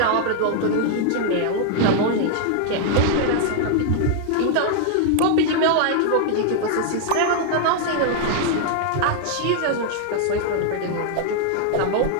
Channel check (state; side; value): different; both; correlation 0.00